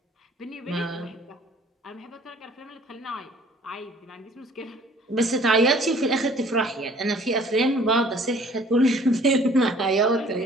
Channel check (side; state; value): both; normal; correlation 0.55